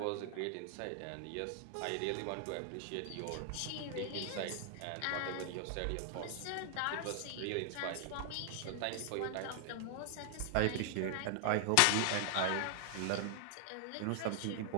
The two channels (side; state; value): both; different; correlation 0.00